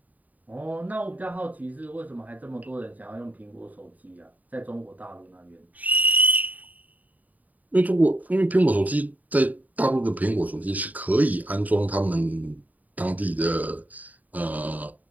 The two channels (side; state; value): left; late; 0.077 ms